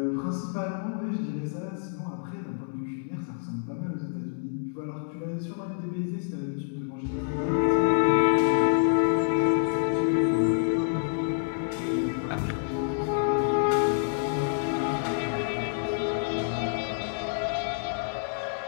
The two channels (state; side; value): silent; right; 60 dB below the other